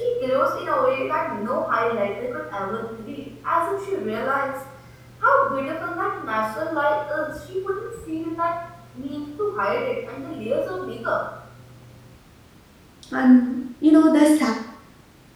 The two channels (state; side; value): identical; both; correlation 1.00